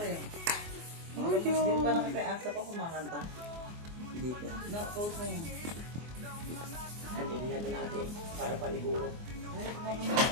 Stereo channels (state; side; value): late; left; 24 ms